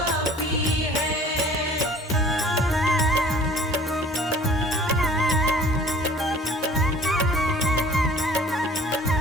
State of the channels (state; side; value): normal; both; correlation 0.49